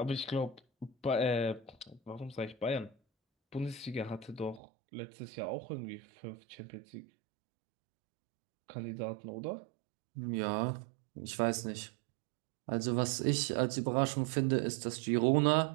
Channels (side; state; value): left; drops out; at 4.6 s